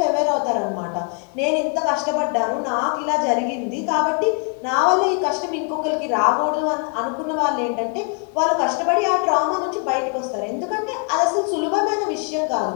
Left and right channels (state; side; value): quieter; right; 37.1 dB